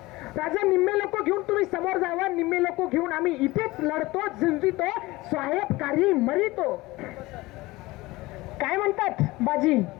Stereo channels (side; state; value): right; quieter; 20.4 dB